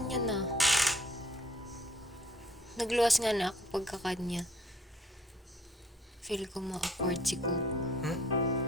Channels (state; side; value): normal; both; correlation 0.59